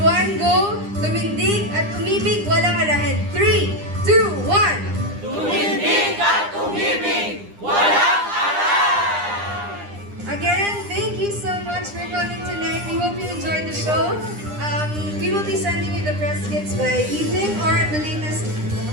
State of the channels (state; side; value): late; left; 9.9 ms